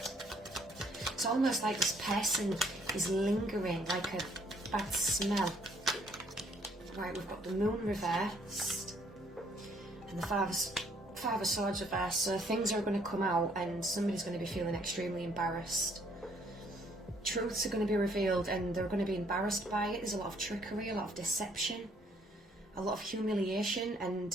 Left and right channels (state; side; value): normal; both; correlation 0.65